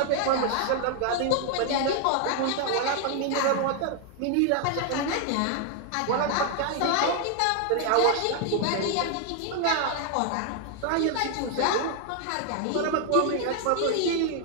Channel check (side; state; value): both; different; correlation 0.00